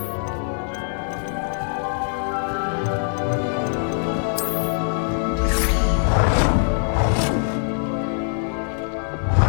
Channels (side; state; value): right; silent; 56 dB below the other